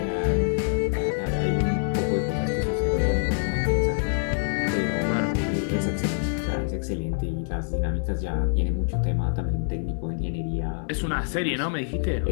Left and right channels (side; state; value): right; silent; 60 dB below the other